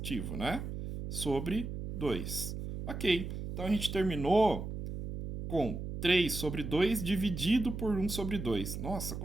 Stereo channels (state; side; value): noise; right; hum, 6 dB below the sound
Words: né? Sobre 2. Ok, então a gente terminou com 3 sobre 2 dividido por 1 sobre 2. Nossa,